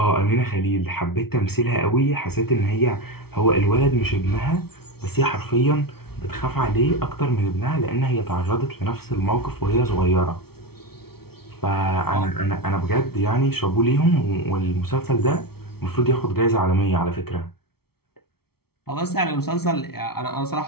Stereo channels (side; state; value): right; late; 0.95 ms